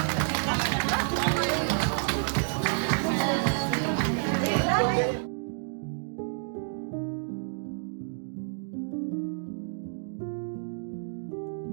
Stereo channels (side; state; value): left; silent; digital silence